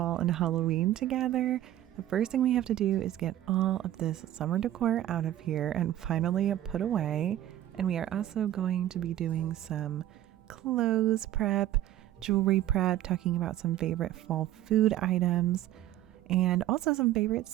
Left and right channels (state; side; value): quieter; left; 13.2 dB